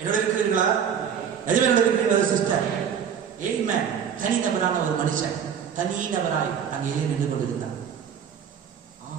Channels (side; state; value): left; quieter; 7.9 dB